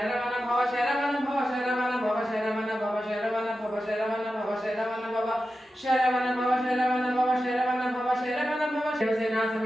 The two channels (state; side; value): normal; both; correlation 0.92